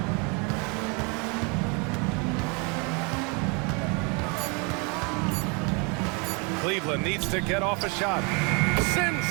Cleveland needs to get off a shot. Sends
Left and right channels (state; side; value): quieter; left; 31.9 dB